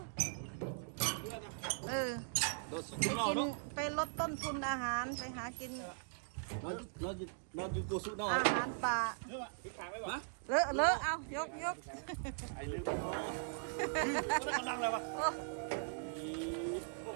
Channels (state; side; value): silent; left; digital silence